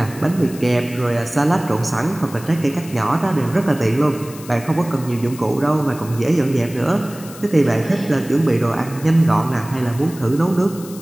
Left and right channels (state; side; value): noise; left; hiss, 18 dB below the sound